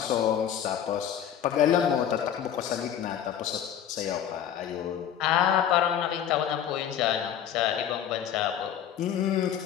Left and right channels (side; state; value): right; quieter; 9.7 dB